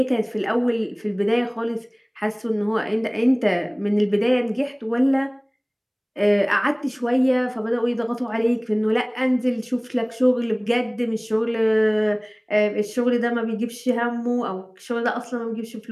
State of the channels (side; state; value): both; identical; correlation 1.00